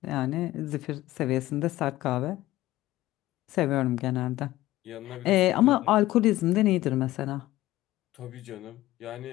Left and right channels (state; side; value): quieter; right; 16.3 dB